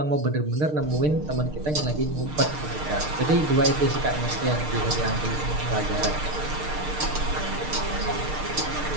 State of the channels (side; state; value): left; late; 6.6 ms